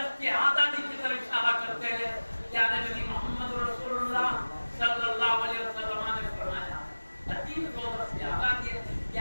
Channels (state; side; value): inverted; both; correlation -1.00